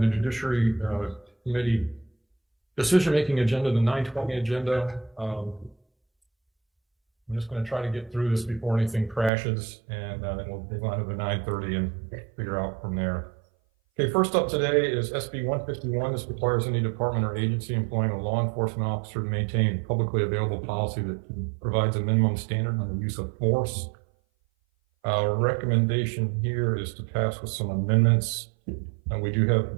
Judiciary Committee decision-making agenda, the 920 agenda. I'm just going to try to get through this before anything crashes, and then we'll move on to the 930 and figure out from there. Okay, first up today is SB 151. This requires any department or agency employing a law enforcement officer to maintain publicly available policy that provides a minimum standard on the use of force. Our recommendation here is to pass with some amendments. And we do have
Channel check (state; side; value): drops out; left; at 9.3 s